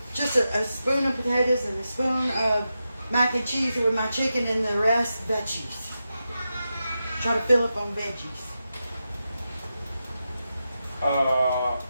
just a spoon of potatoes and a spoon of mac and cheese with my chicken and the rest veggies. Try to fill up on veggies.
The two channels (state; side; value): inverted; both; correlation -0.90